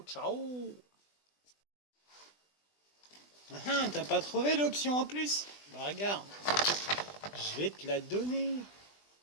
ciao. T'as pas trouvé l'option en plus? Bah regarde, je vais te la donner.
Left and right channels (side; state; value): right; late; 20 ms